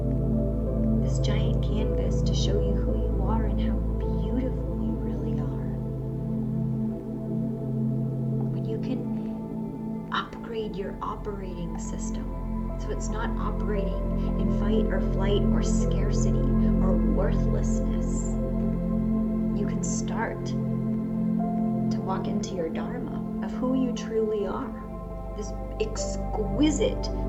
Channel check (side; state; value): both; identical; correlation 1.00